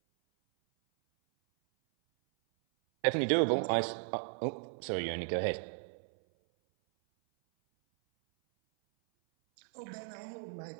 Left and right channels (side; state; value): left; silent; 54 dB below the other